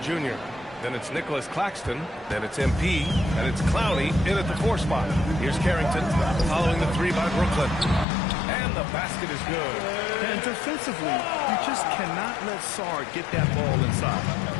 Then it's Nicholas Claxton. Then it's MP. And it's Clowney in at the 4 spot. Here's Carrington following the 3 by Brooklyn. And the basket is good. And defensively, you just cannot let Sarr get that ball inside.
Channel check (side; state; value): right; drops out; at 8.1 s